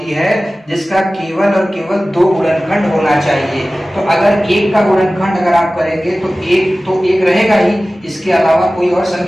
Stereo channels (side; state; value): both; normal; correlation 0.97